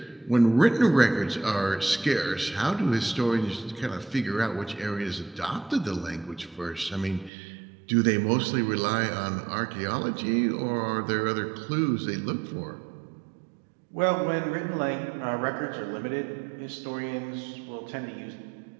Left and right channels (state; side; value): drops out; left; at 7.3 s